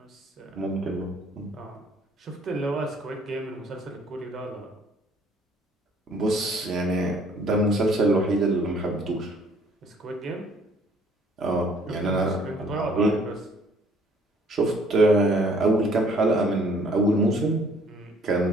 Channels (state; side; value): normal; both; correlation 0.60